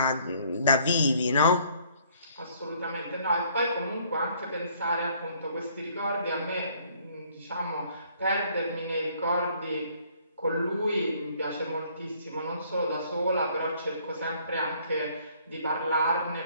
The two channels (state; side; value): inverted; both; correlation -0.62